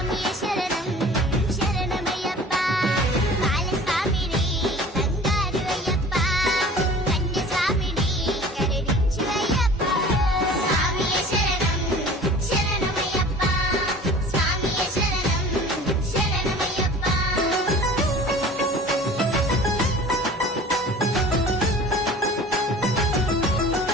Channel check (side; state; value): both; normal; correlation 0.44